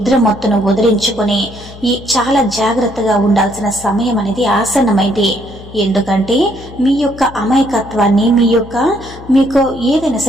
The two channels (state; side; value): noise; left; hum, 17 dB below the sound